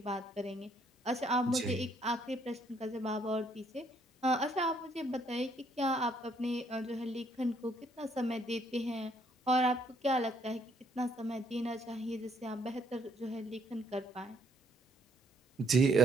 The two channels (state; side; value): normal; both; correlation 0.68